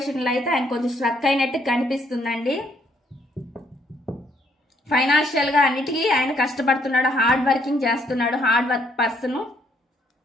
అయితే ఆయన కొంచెం స్ట్రక్ అయినట్టు కనిపిస్తుందండి. ఫైనాన్షియల్ గా అన్నిటికీ ఆయన కష్టపడుతున్నాడు, హార్డ్ వర్కింగ్ చేస్తున్నాడు, hard work person.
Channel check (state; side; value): normal; both; correlation 0.69